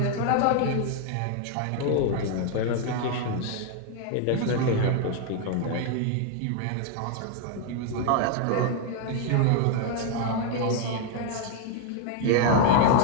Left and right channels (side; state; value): both; different; correlation 0.00